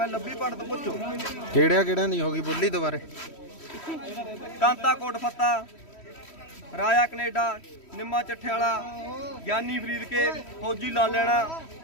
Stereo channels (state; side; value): late; right; 3.1 ms